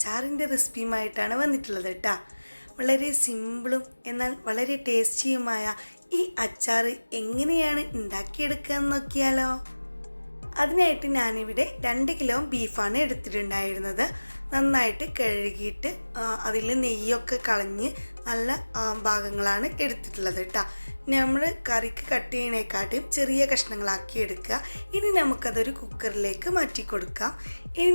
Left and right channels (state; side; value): inverted; both; correlation -1.00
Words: റെസിപ്പിയുമായിട്ടാണ് വന്നിട്ടുള്ളത് കേട്ടോ. വളരെ സിമ്പിളും എന്നാൽ വളരെ ടേസ്റ്റിയുമായ ഈ അച്ചാർ എങ്ങനെയാണ് ഉണ്ടാക്കിയെടുക്കുക എന്ന് നോക്കിയാലോ. അതിനായിട്ട് ഞാനിവിടെ 2 കിലോ ബീഫാണ് എടുത്തിട്ടുണ്ടായിരുന്നത്. നന്നായിട്ട് കഴുകിയിട്ട് അതിൽ നെയ്യൊക്കെ കളഞ്ഞ് നല്ല ഭാഗങ്ങളാണ് എടുത്തിട്ടുള്ളത് കേട്ടോ. നമ്മൾ കറിക്ക് കട്ട് ചെയ്യണേക്കാട്ടും ചെറിയ കഷ്ണങ്ങളാക്കി എടുക്കുക. ഇനി നമുക്കതൊരു കുക്കറിലേക്ക് മാറ്റി കൊടുക്കാം. ഇനി